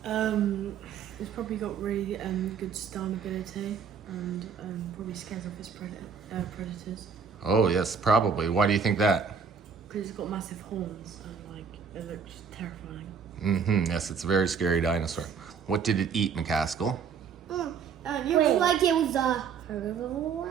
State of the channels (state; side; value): quieter; left; 6.4 dB